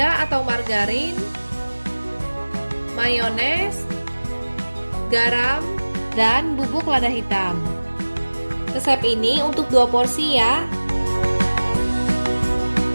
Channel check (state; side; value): inverted; both; correlation -1.00